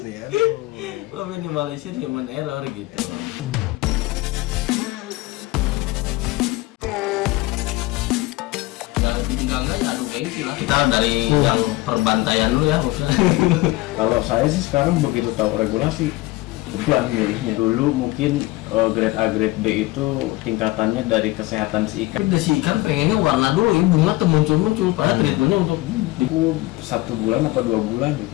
ya. Meminimalisir human error gitu. Enggak adu gengsi lah. Kita dari yang perbantaian dulu ya maksudnya. Kalau saya sih sekarang begitu tahu regulasi, beban milihnya. Dulu mungkin grade A, grade B itu tingkatannya dari kesehatan si ikan. Tapi si ikan pengennya warna dulu ya, bunga tuh muncul-muncul. Padahal treatmentnya untuk 1 bulan atau 2 bulan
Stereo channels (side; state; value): right; quieter; 19.8 dB